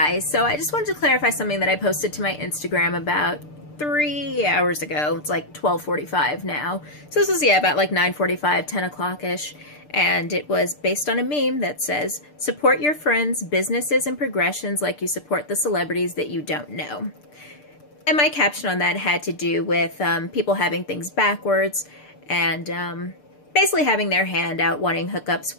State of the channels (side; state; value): right; late; 6.7 ms